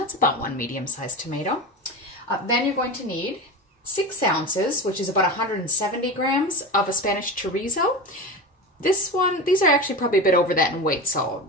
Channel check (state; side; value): normal; both; correlation 0.26